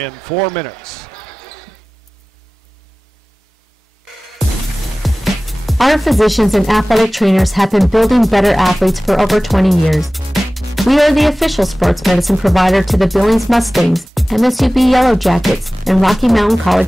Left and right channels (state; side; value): normal; both; correlation 0.97